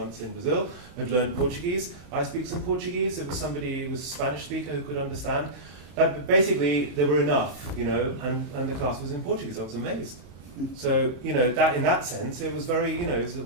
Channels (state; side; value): late; left; 34 ms